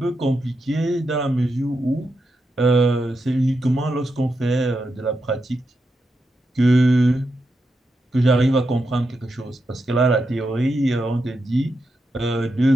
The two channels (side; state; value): both; normal; correlation 0.86